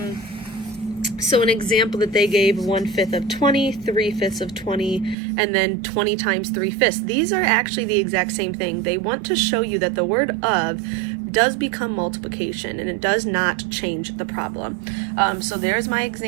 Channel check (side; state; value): left; drops out; at 5.2 s